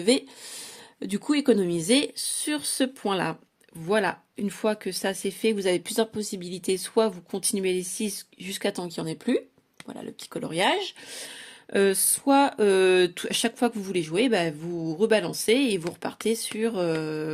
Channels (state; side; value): identical; both; correlation 1.00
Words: du coup économiser sur ce point-là. Voilà, une fois que ça c'est fait, vous avez plusieurs possibilités. Soit vous continuez les 6 jusqu'à temps qu'il n'y en ait plus. Voilà le petit coloriage. Soit à chaque fois que vous voulez jouer, vous rebalancez et vous repartez sur